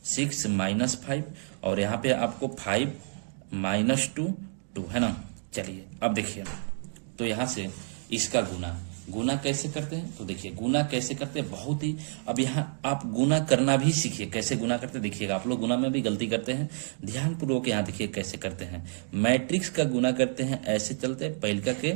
6 -5 और यहाँ पे आपको 5 -2 2 है ना। चलिए अब देखिए, तो यहाँ से इसका गुना कैसे करते हैं, तो देखिए गुना कैसे करते हैं बहुत ही, अब यहाँ आप गुना करना भी सीखिए, कैसे गुना करते हैं देखिएगा। आप लोग गुना में भी गलती करते हैं, ध्यानपूर्वक यहाँ देखिए कैसे करते हैं। मैट्रिक्स का गुना करते हैं, ऐसे चलते हैं, पहिलका के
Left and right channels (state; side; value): silent; left; 58 dB below the other